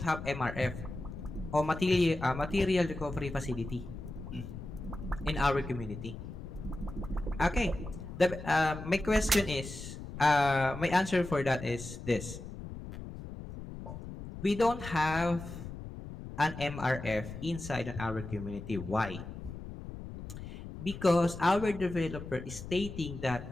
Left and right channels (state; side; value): noise; left; rumble, 10 dB below the sound